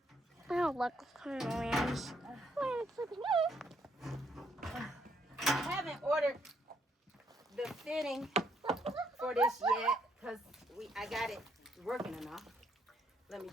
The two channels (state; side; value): normal; both; correlation 0.72